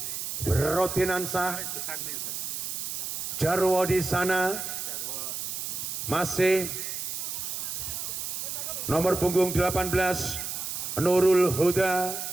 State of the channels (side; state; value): right; noise; hiss, 4 dB below the sound